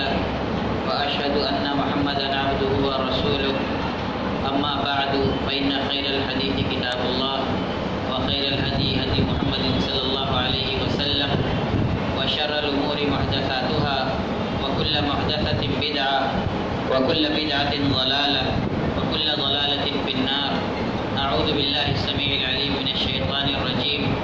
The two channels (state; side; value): identical; both; correlation 1.00